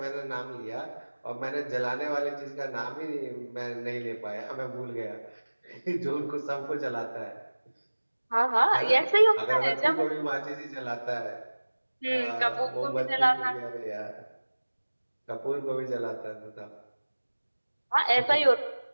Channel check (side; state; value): both; inverted; correlation -1.00